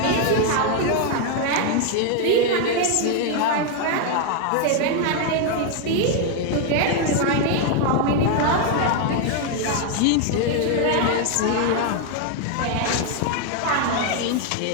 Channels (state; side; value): different; both; correlation 0.00